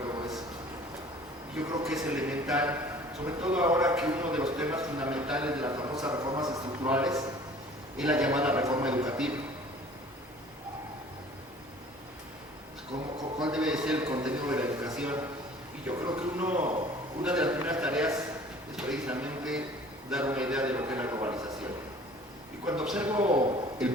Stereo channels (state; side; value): normal; both; correlation 0.49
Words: todo eso. Yo creo que es elemental, sobre todo ahora que uno de los temas fundamentales de las famosas reformas estructurales es la llamada reforma educativa. ¿Cuál debe ser el contenido de la educación? Y yo creo que una de las primeras tareas es precisamente dar una idea de lo que es la globalización. Y cuando observo el